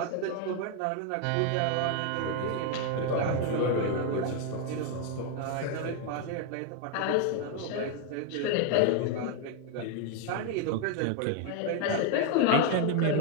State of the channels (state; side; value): different; both; correlation 0.00